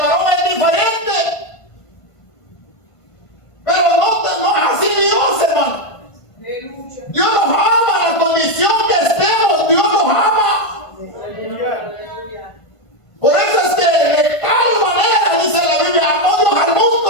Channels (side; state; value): right; late; 1.5 ms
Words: varón es diferente. Pero no es así Dios, hermano. Dios nos ama en la condición que estemos. Dios nos ama. Por eso es que de tal manera, dice la Biblia, amó Dios al